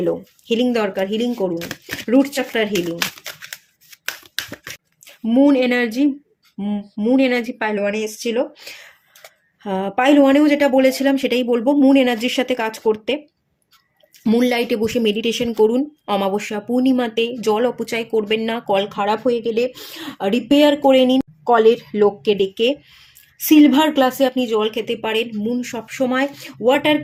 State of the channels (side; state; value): both; identical; correlation 1.00